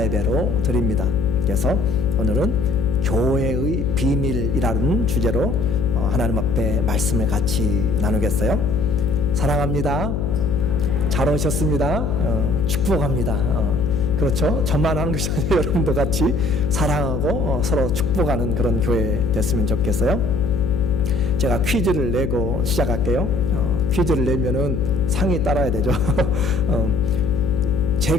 예배로 드립니다. 그래서 오늘은 교회의 비밀이라는 주제로 하나님 앞에 말씀을 같이 나누겠어요. 사랑합니다. 잘 오셨습니다. 축복합니다. 그렇죠. 저만 하는 것이 아니라 여러분도 같이 사랑하고 서로 축복하는 그런 교회 됐으면 좋겠어요. 제가 퀴즈를 내고 시작할게요. 퀴즈를 내면은 상이 따라야 되죠.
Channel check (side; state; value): left; noise; hum, 1 dB below the sound